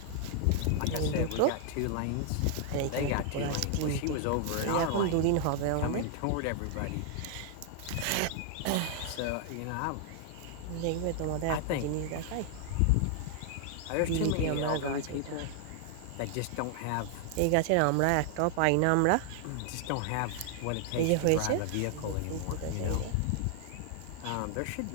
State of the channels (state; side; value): different; both; correlation 0.00